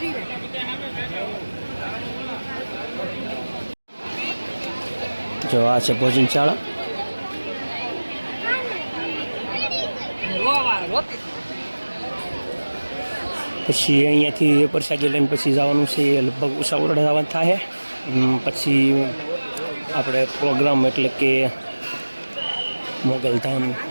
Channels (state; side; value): inverted; both; correlation -1.00